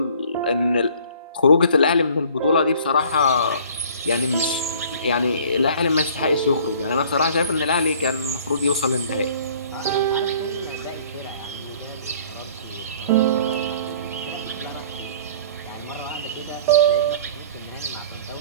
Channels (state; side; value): inverted; both; correlation -0.52